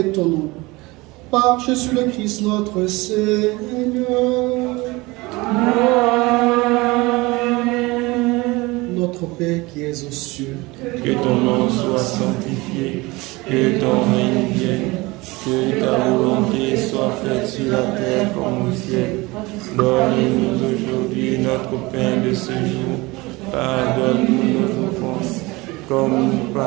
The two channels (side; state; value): left; quieter; 22.6 dB